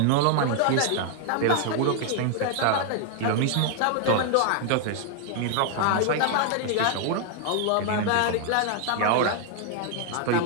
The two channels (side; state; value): both; different; correlation 0.00